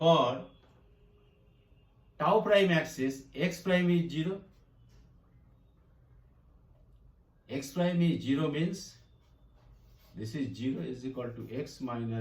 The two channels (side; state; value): both; identical; correlation 1.00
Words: tau prime axis, x prime is 0. X prime is 0 means this is 0 is equal to x